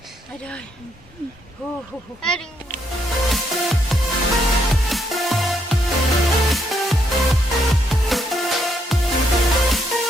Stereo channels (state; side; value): normal; both; correlation 0.74